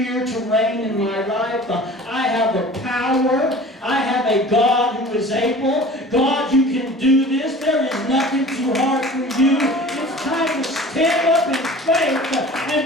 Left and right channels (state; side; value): normal; both; correlation 0.42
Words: to reign in my life. I have the power. I have a God who is able. God, you can do this. There is nothing too hard for you. It's time to stand up in faith and